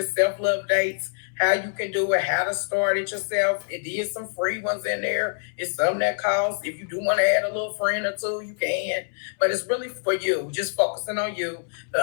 self-love dates, how you can do it, how to start it yourself. It is some free ones in there. It's some that cost. If you do want to add a little friend or two, you can. But it's really for you, just focusing on you. The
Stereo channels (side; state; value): right; silent; 62 dB below the other